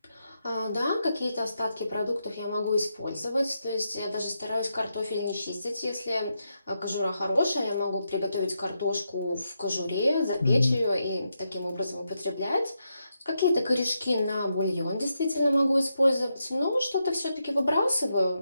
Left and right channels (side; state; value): both; inverted; correlation -0.84